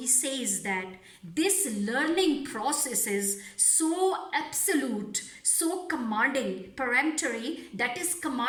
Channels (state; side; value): identical; both; correlation 1.00